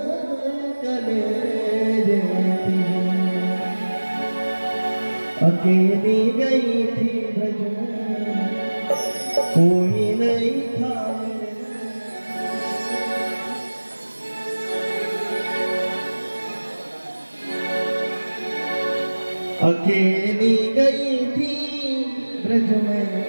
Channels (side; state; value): both; inverted; correlation -1.00